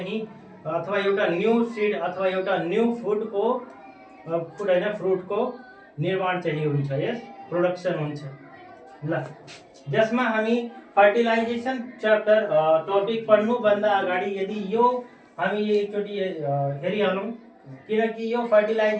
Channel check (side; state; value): both; identical; correlation 1.00